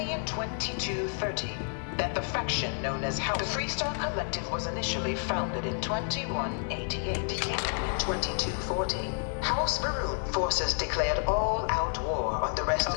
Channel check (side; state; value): right; silent; 58 dB below the other